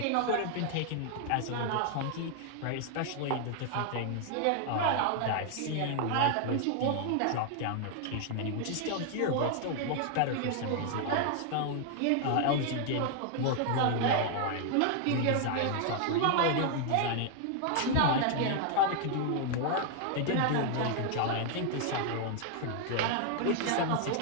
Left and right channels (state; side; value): different; both; correlation 0.00